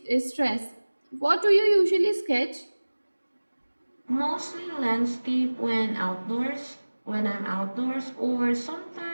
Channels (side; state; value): both; inverted; correlation -1.00